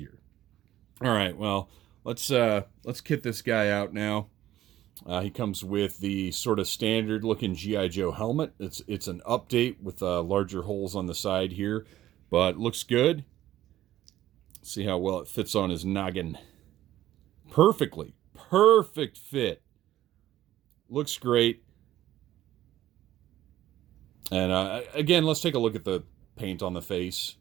All right, well, let's kit this guy out now. He comes with the sort of standard-looking G.I. Joe helmet. It's an update with larger holes on the side here, but looks good. See how well it fits on his noggin. Perfectly. Perfect fit. Looks great. And again, let's take a look at the paint on the face.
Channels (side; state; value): left; quieter; 13.6 dB